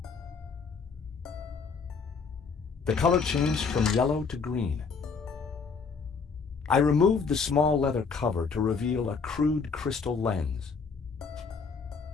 The color changed from yellow to green. I removed the small leather cover to reveal a crude crystal lens.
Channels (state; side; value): quieter; right; 5.1 dB